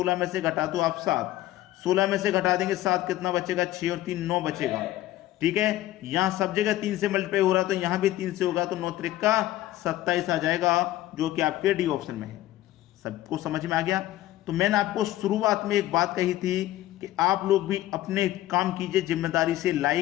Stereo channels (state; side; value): quieter; right; 14.9 dB